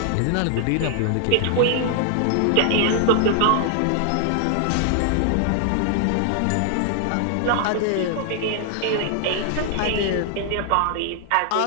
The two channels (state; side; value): different; both; correlation 0.00